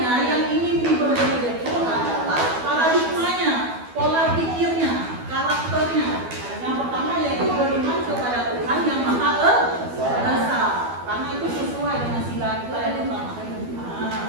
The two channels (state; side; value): late; left; 12 ms